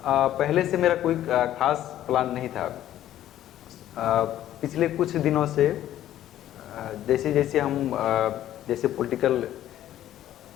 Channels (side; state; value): right; quieter; 12.4 dB